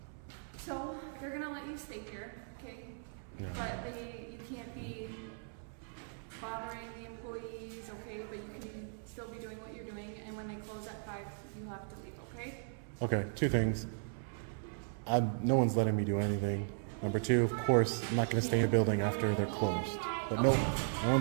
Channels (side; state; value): left; silent; 53 dB below the other